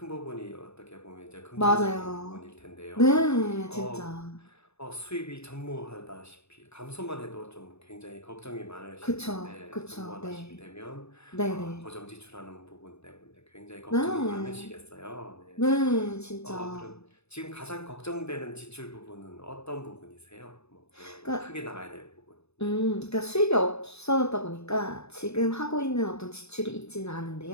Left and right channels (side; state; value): right; late; 0.80 ms